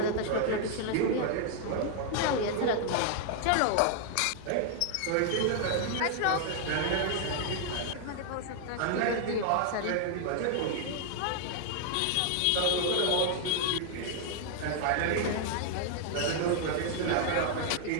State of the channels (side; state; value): both; different; correlation 0.00